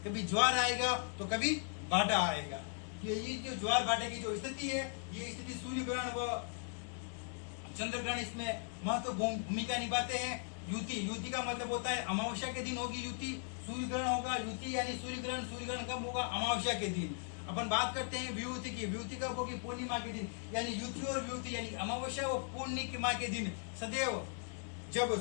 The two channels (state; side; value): silent; right; 52 dB below the other